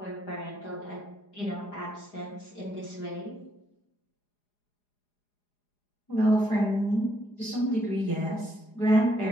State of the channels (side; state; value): right; late; 4.9 ms